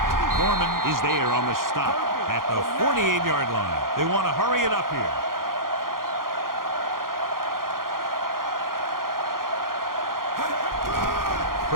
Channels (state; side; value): late; left; 0.91 ms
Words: Foreman is there on the stop at the 48-yard line. They want to hurry it up here.